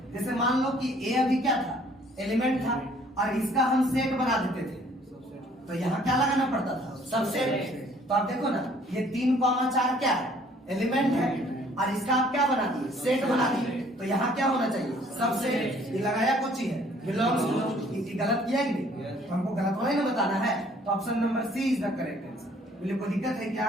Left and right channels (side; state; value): both; normal; correlation 0.59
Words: जैसे मान लो कि ए अभी क्या था, एलिमेंट था, और इसका हम सेट बना देते थे, तो यहाँ क्या लगाना पड़ता था, सबसेट। तो आप देखो ना, ये 3,4 क्या है, एलिमेंट है, और इसका आप क्या बना दिए, सेट बना दिए, तो यहाँ क्या होना चाहिए, सबसेट। ये लगाया कौन सी है, बिलोंग्स टू। गलत किया कि नहीं, तो हमको गलत वाला ही ना बताना है, तो option number C is the correct answer. बोले कोई दिक्कत है